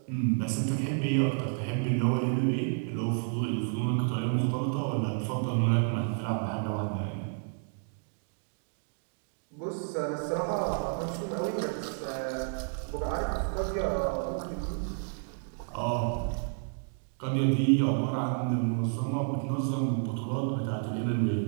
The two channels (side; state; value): left; silent; 57 dB below the other